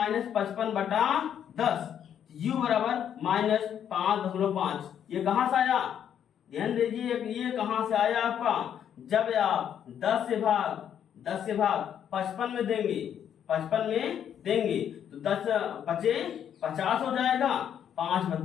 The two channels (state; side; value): quieter; right; 9.2 dB